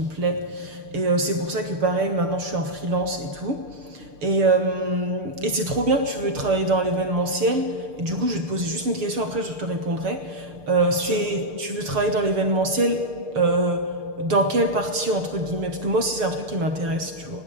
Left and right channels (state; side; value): late; left; 6.7 ms